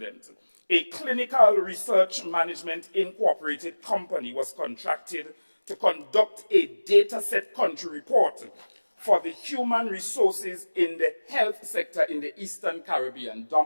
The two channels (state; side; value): inverted; both; correlation -1.00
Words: a clinical research management incorporated company was contracted to conduct a dataset country report for the human resources in the health sector in the Eastern Caribbean.